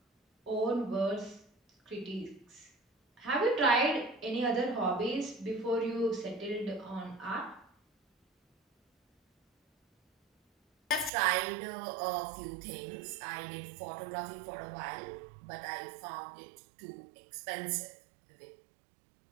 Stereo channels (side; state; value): left; drops out; at 11.1 s